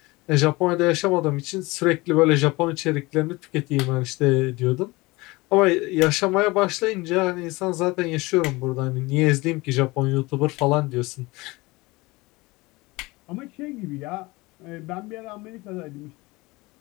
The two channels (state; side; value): quieter; right; 22.6 dB